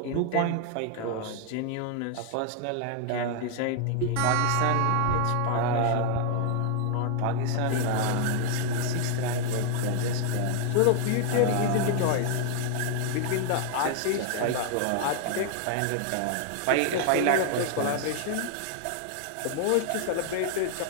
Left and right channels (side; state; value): both; different; correlation 0.00